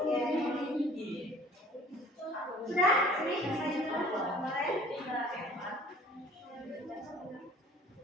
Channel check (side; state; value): both; normal; correlation 0.50